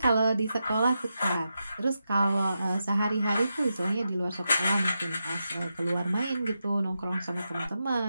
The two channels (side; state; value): both; inverted; correlation -0.87